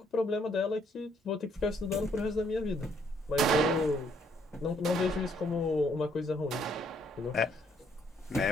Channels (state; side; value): normal; both; correlation 0.68